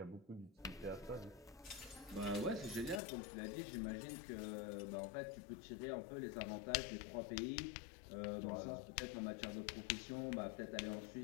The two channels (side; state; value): right; drops out; at 3.0 s